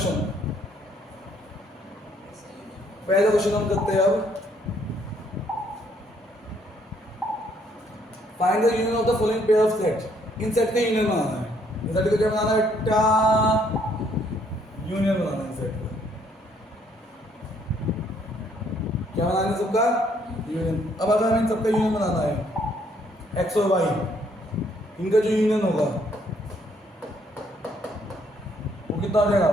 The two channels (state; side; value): normal; both; correlation 0.67